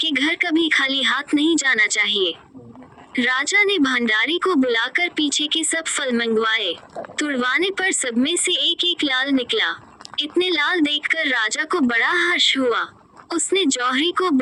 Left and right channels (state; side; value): identical; both; correlation 1.00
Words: घर कभी खाली हाथ नहीं जाना चाहिए। राजा ने भंडारी को बुलाकर पीछे के सब फल मंगवाए। तुड़वाने पर सब में से एक एक लाल निकला। इतने लाल देखकर राजा को बड़ा हर्ष हुआ। उसने जौहरी को